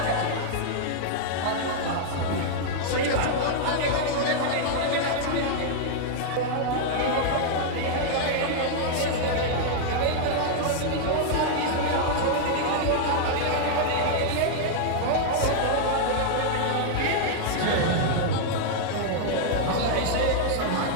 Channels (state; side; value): different; both; correlation -0.01